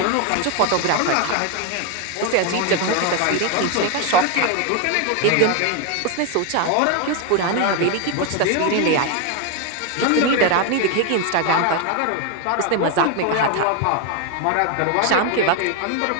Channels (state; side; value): different; both; correlation 0.01